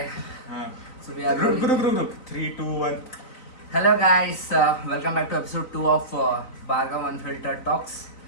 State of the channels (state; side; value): late; right; 3.9 ms